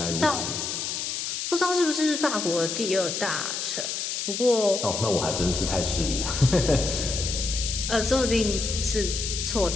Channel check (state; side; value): noise; left; hiss, 3 dB below the sound